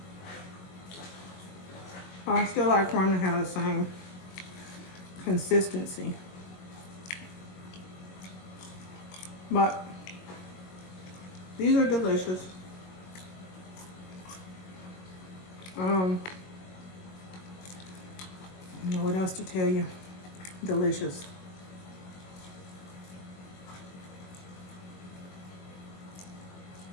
I still like for them to have the same consistency. But these are delicious. I don't know what else to tell you. Delicious.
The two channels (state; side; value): late; right; 22 ms